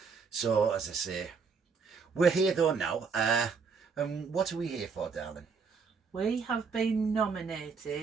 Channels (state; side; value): quieter; left; 5.4 dB